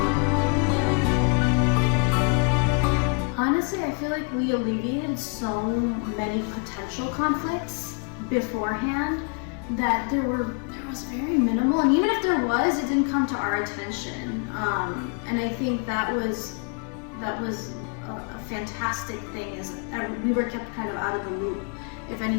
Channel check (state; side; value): quieter; right; 38.6 dB